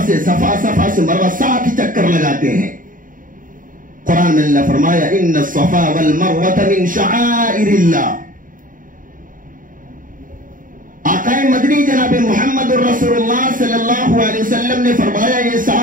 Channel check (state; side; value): late; left; 0.39 ms